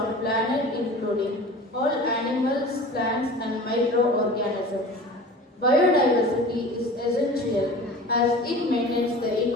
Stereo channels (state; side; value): normal; both; correlation 0.38